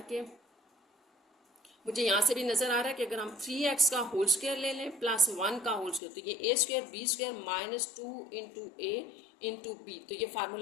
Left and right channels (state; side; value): drops out; right; at 6.0 s